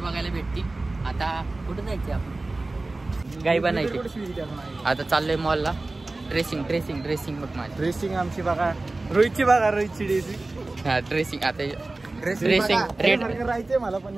भेटतील. आता कुठं जायचे आपण? गाई बनायची. आता चाललोय मॉलला. ड्रेसिंग बघ माझी. ड्रेसिंग आमची बघा, रोहितची ड्रेसिंग. हा ड्रेसिंग. आता ड्रेसिंग रेड राहायचंय मला, पण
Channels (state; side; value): quieter; left; 3.1 dB